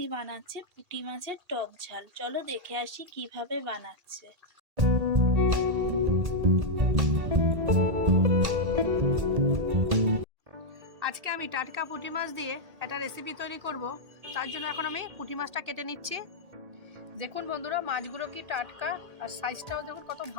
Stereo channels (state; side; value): late; left; 1.8 ms